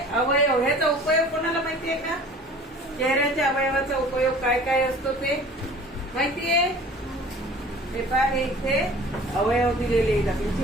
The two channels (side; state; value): both; normal; correlation 0.46